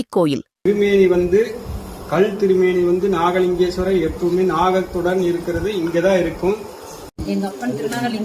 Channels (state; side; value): identical; both; correlation 1.00